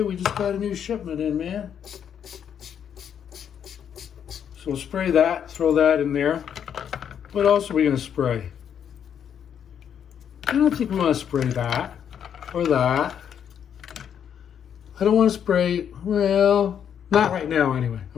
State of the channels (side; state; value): right; quieter; 8.5 dB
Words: we just got a new shipment in, man. So we'll spray that, throw that in there. What else are we gonna spray? I don't think we wanna spray that, or that. I don't wanna spray, well, not right now anyway.